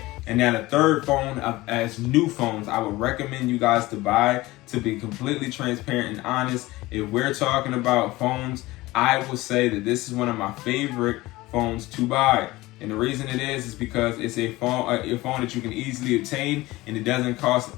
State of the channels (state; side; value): quieter; right; 19.3 dB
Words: And now the third phone as new phones I would recommend you guys to buy, to be completely transparent and honest. If we're talking about phones, I will say that this is one of my favorite phones to buy. And the reason it is because it's a phone that you can easily obtain, and it doesn't cost